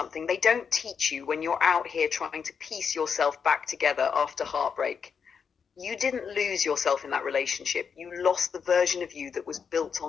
they don't teach you when you're out here trying to piece yourself back together after heartbreak. You didn't lose yourself in that relationship. You lost the version of you that was built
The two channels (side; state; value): right; quieter; 6.4 dB